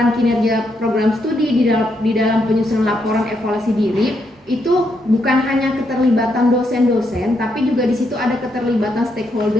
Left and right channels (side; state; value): both; normal; correlation 0.78